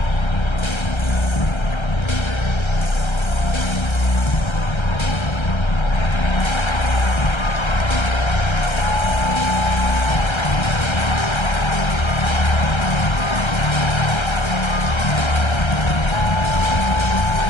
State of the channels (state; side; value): late; right; 1.3 ms